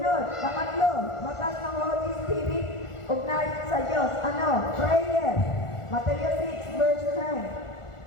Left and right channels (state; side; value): late; right; 1.4 ms